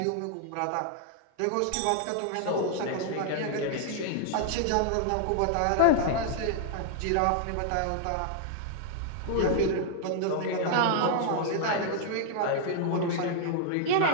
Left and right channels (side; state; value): both; different; correlation 0.00